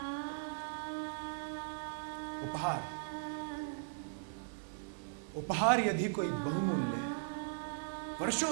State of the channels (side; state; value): left; silent; digital silence